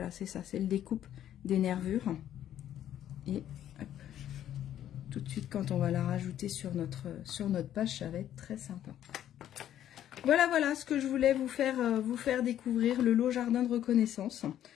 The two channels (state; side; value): quieter; right; 11.2 dB